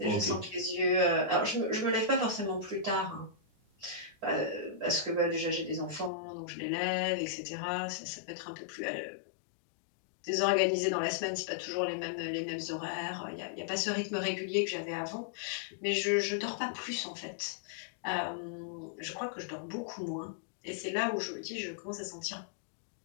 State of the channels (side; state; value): right; drops out; at 6.1 s